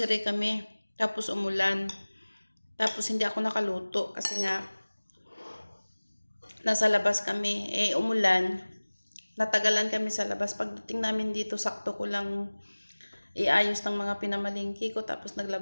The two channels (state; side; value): inverted; both; correlation -1.00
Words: kami. Tapos umulan. Tapos hindi ako nakaluto kasi nga nasa labas kami. Umulan. Natagalan kami sa labas. Pagdating namin dito, sakto ko lang iayos ng mga pinamalingki ko. Tapos